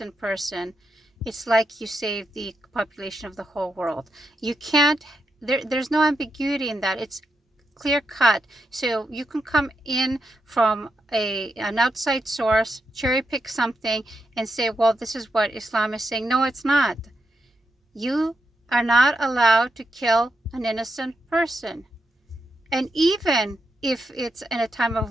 person, it's like you save the population of the whole world. You can't, there's no ambiguity in that. It's clear cut. So you can come in from an outside source, cherry pick something and say, well, this is what Islam is saying. No, it's not. You are not allowed to kill an innocent person. And even if it's in a time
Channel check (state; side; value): normal; both; correlation 0.85